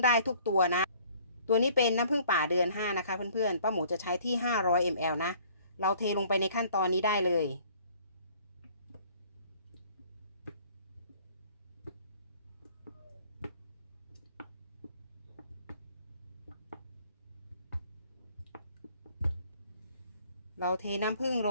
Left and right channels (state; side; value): inverted; both; correlation -0.56